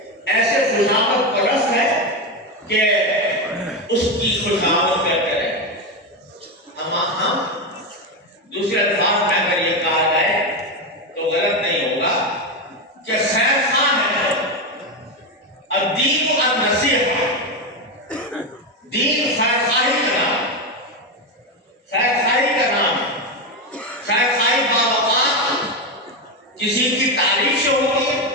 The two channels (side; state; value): both; normal; correlation 0.12